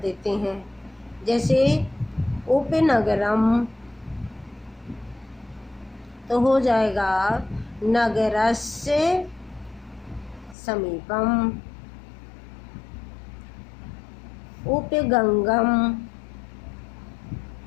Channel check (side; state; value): right; drops out; at 10.6 s